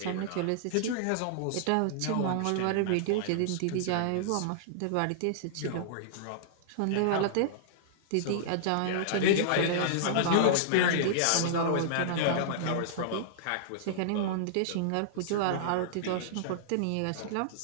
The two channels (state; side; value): different; both; correlation -0.01